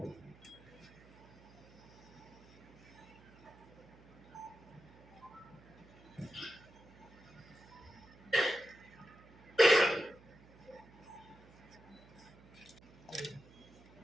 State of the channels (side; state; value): right; noise; hum, 23 dB below the sound